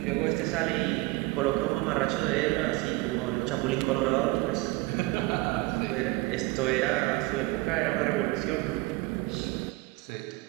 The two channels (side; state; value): left; quieter; 21.6 dB